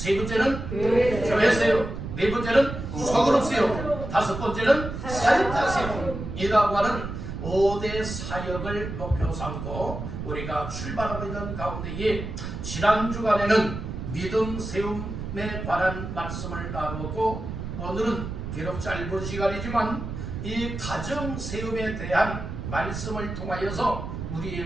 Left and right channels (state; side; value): noise; right; rumble, 7 dB below the sound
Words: 번째는 교회 세움. 네 번째는 소그룹 세움. 다섯 번째는 사역자 세움이라고 하는 5대 사역을 목표 삼고 우리가 출발하고 있는 가운데에 지난 주간에는 믿음 세움에 관한 말씀을 나누고 오늘은 비록 짧은 시간이지만 이 가정 세움에 대한 말씀을 통하여서